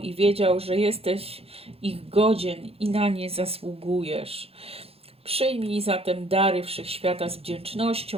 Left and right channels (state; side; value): late; left; 0.28 ms